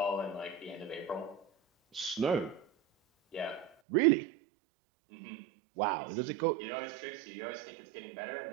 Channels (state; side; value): drops out; left; at 3.7 s